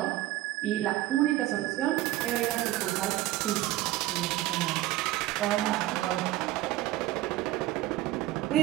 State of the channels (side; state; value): left; quieter; 15.8 dB